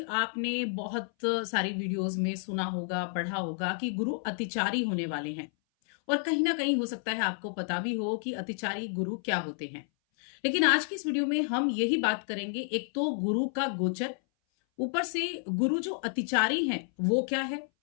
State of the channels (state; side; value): silent; right; 58 dB below the other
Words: आपने बहुत सारी वीडियोस में सुना होगा, पढ़ा होगा कि गुरु अतिचारी होने वाले हैं और कहीं ना कहीं हो सकता है आपको पता भी हो कि अतिचारी गुरु क्या होते हैं। लेकिन आज की इस वीडियो में हम यही बात करेंगे, एक तो गुरु का गोचर, ऊपर से गुरु जो अतिचारी हैं वो क्या है,